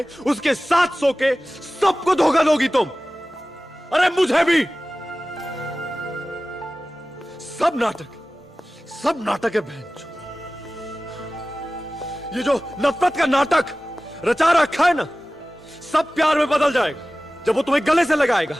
उसके साथ सो के सबको धोखा दोगी तुम। अरे मुझे भी। सब नाटक है बहन। ये जो नफरत का नाटक रचा रखा है ना, सब प्यार में बदल जाएगा जब वो तुम्हें गले से लगाएगा,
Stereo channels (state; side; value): normal; both; correlation 0.97